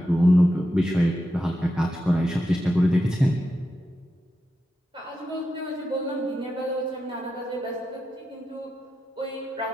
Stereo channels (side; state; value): both; normal; correlation 0.88